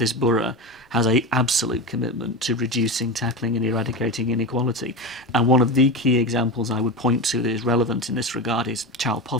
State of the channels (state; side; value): normal; both; correlation 0.22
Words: borough has a absolute commitment to reducing, tackling and eradicating inequality. And one of the key examples I would point to that is relevant in this regard is child